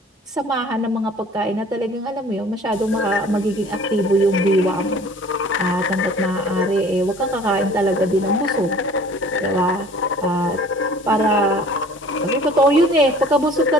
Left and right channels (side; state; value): both; normal; correlation 0.49